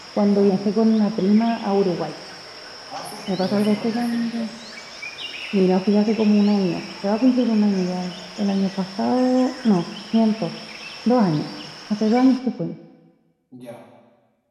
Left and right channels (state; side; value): identical; both; correlation 1.00